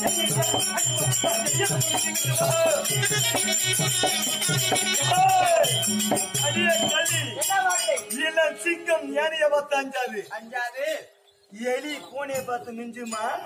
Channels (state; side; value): identical; both; correlation 1.00